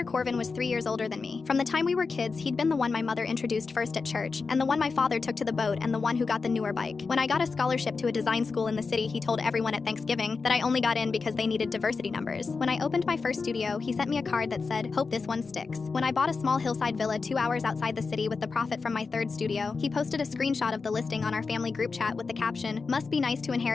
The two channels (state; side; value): quieter; right; 4.6 dB